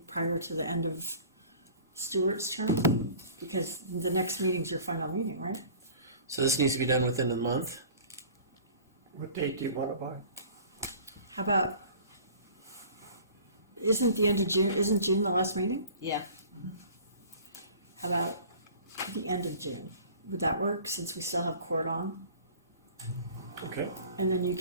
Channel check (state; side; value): inverted; both; correlation -0.45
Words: prior to the end of Stewart's term? Because the next meeting's your final meeting, right? So this needs to be done within a month? What date do you want it by? How about, isn't June the last meeting? Yeah. How about the end of June? Would that work, since we still have court on? Okay. And then you